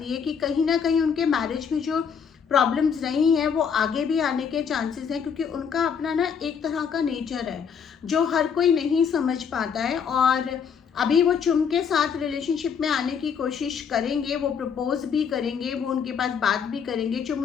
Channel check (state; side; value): quieter; right; 6.8 dB